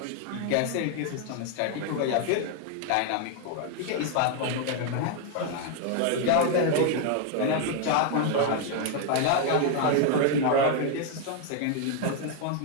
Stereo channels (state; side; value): different; both; correlation 0.00